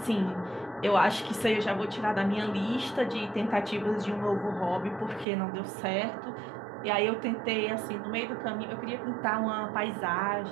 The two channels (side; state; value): left; drops out; at 5.2 s